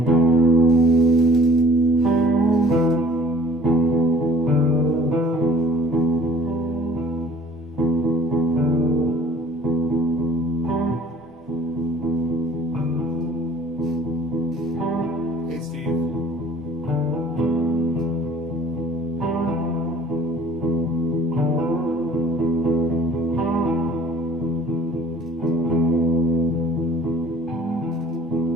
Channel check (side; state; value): both; normal; correlation 0.52